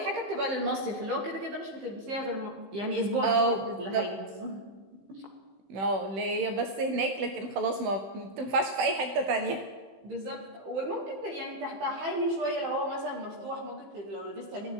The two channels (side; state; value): left; late; 16 ms